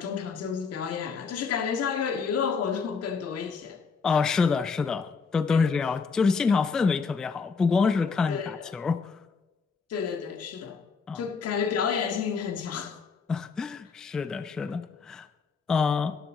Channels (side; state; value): right; quieter; 5.2 dB